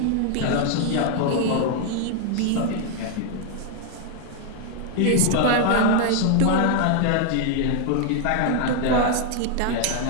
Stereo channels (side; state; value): both; different; correlation 0.00